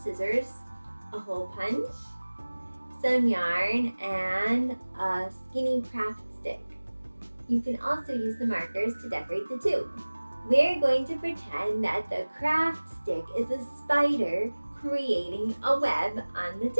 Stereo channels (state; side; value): inverted; both; correlation -1.00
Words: a hole punch, some yarn, and a skinny craft stick. You can also use the markers to decorate the tube. We're going to pretend that the craft stick is a spider creating a web on the